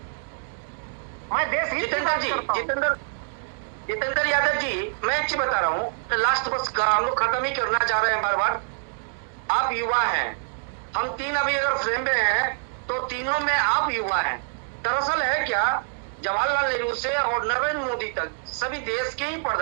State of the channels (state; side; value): silent; left; digital silence